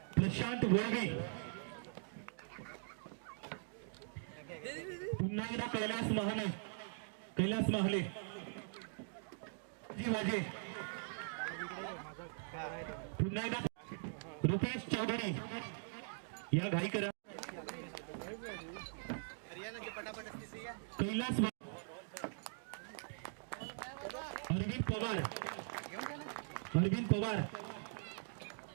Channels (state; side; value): silent; left; digital silence